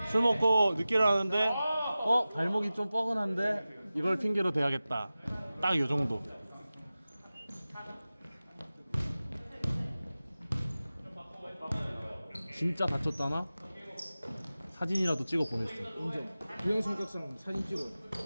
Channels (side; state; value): both; inverted; correlation -0.96